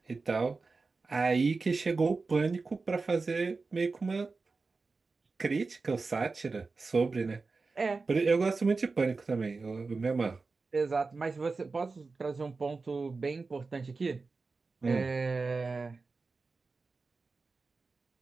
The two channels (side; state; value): left; quieter; 4.1 dB